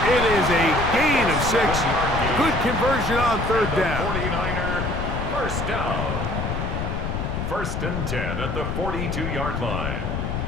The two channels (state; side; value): noise; left; rumble, 3 dB below the sound